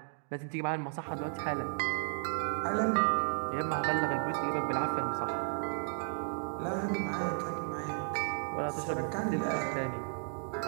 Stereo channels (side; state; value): left; silent; 55 dB below the other